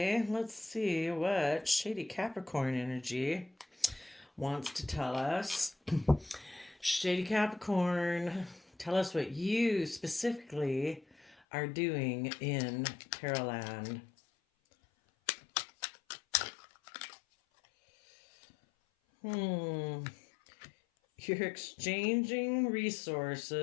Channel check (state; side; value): drops out; right; at 11.4 s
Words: let's see what Shady Capricorn energy wants to tell us. Shady Capricorn, tell us what you specifically are doing in Tarotland. You're exchanging